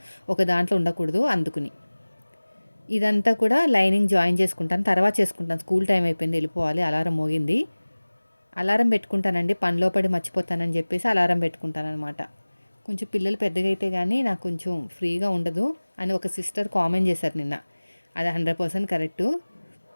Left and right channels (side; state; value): both; inverted; correlation -1.00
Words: ఒక దాంట్లో ఉండకూడదు అందుకుని. ఇదంతా కూడా లైనింగ్ జాయిన్ చేసుకుంటాను. తర్వాత చేసుకుంటాను. స్కూల్ టైం అయిపోయింది, వెళ్ళిపోవాలి. అలారం మోగింది. అలారం పెట్టుకుంటానండి. పనిలో పడి మర్చిపోతానని చెప్పేసి అలారం పెట్టుకుంటాననమాట. కొంచెం పిల్లలు పెద్దగా అయితే గానీ నాకు కొంచెం ఫ్రీగా ఉండదు అని ఒక సిస్టర్ కామెంట్ చేశారు నిన్న. అది 100% కరెక్టు.